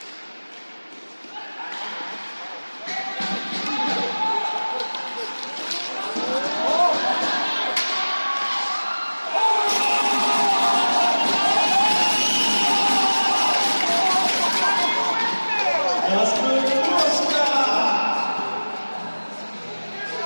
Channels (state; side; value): inverted; both; correlation -1.00